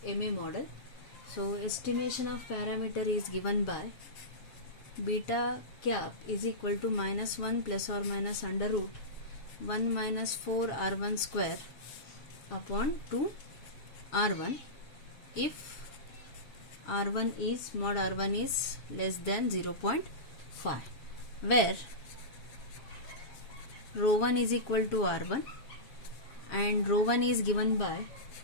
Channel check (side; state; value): right; late; 7.4 ms